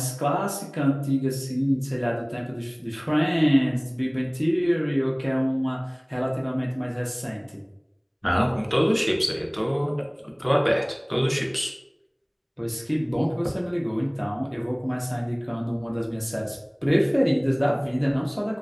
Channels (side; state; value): both; identical; correlation 1.00